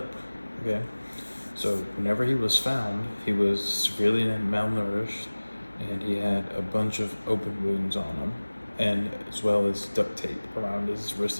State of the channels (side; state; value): both; inverted; correlation -1.00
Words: Okay, so whenever he was found, he was severely malnourished and he had a bunch of open wounds on him, and as well as duct tape around his wrists